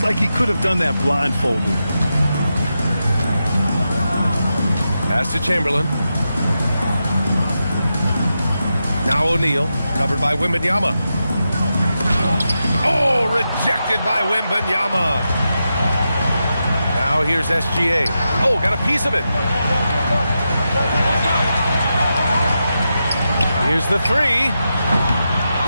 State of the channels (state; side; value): inverted; both; correlation -0.88